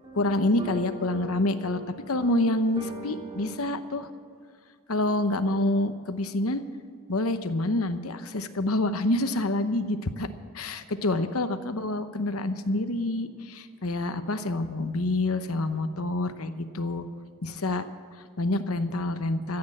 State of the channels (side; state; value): both; normal; correlation 0.41